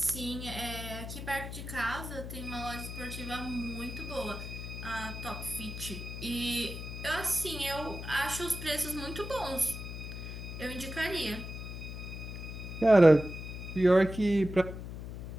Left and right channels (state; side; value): noise; left; hum, 8 dB below the sound